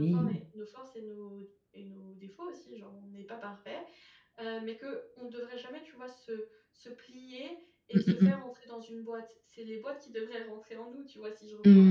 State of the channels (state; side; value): identical; both; correlation 1.00